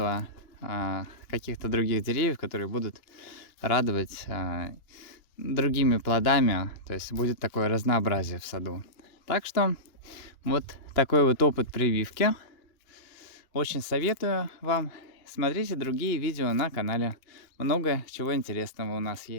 каких-то других деревьев, которые будут радовать другими плодами, то есть будет такое разнообразие в саду. Так что вот такой вот опыт прививки. Очень советую вам. Смотрите другие видео на канале. Много чего интересного у нас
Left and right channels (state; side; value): late; right; 2.9 ms